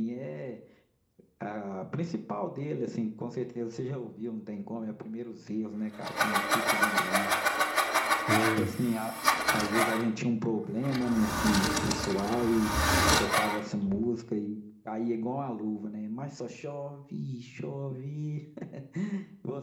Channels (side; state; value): both; identical; correlation 1.00